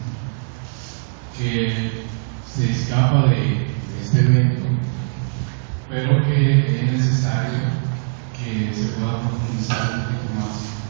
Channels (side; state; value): left; silent; digital silence